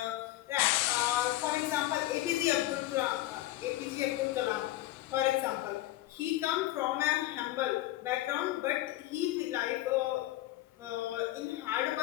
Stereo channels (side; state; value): right; quieter; 16.1 dB